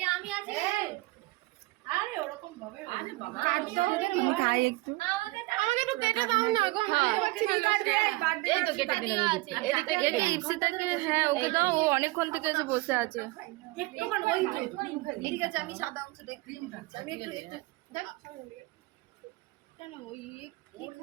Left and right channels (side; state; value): left; quieter; 21.9 dB